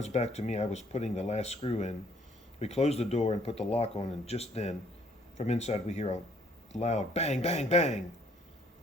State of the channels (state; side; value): normal; both; correlation 0.63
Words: back to me, I was putting the last screw in. We closed the door and put the lock on, and just then, from inside, we hear a loud bang, bang, bang.